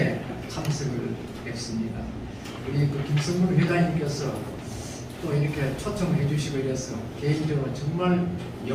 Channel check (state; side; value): identical; both; correlation 1.00